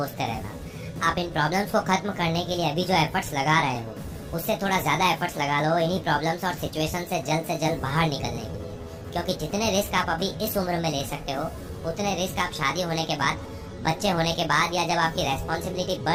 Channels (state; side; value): identical; both; correlation 1.00